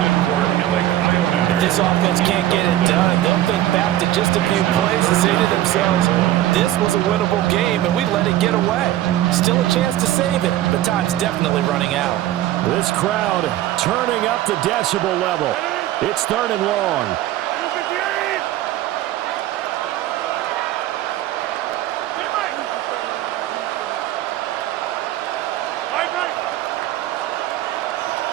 If this offense can't get it done, they'll think back to just a few plays and say to themselves, this was a winnable game, and we let it get away. Still a chance to save it, but time's definitely running out. This crowd turning up the decibel level. It's 3rd and long.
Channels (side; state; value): left; quieter; 14.0 dB